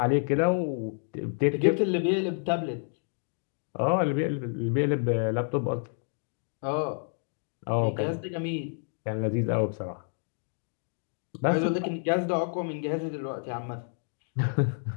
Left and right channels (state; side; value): silent; right; 58 dB below the other